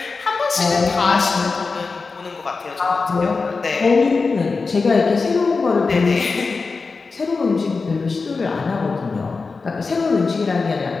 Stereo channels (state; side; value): quieter; right; 4.3 dB